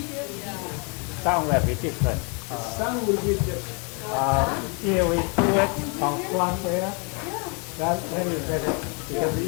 Sound will be different. Sound will be different. Here we do it on front there. That's very better because the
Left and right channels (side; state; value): right; quieter; 34.3 dB